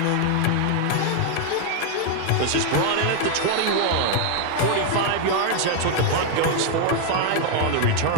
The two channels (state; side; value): different; both; correlation 0.00